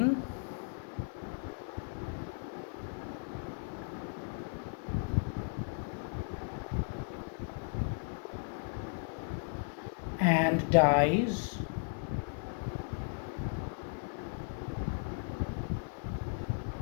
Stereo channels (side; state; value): right; silent; 54 dB below the other